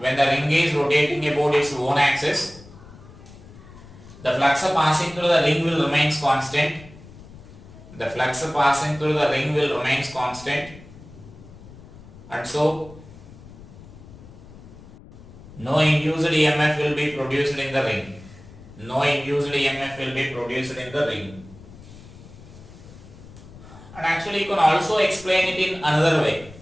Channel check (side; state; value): left; noise; rumble, 19 dB below the sound